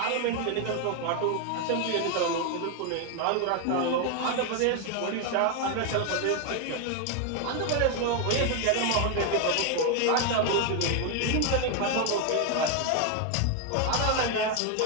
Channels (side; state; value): both; different; correlation 0.01